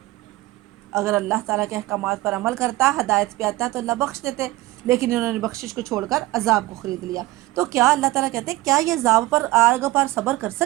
اگر اللہ تعالیٰ کے احکامات پر عمل کرتا، ہدایت پہ آتا، تو اللہ بخش دیتے، لیکن انہوں نے بخشش کو چھوڑ کر عذاب کو خرید لیا۔ تو کیا اللہ تعالیٰ کہتے ہیں کیا یہ عذاب پر، آگ پر صبر کر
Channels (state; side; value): quieter; left; 19.0 dB